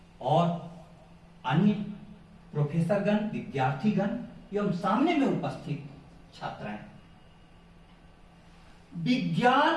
और अन्य प्रोफेसरगण, विद्यार्थीगण एवं सामने में उपस्थित छात्राएं,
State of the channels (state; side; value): identical; both; correlation 1.00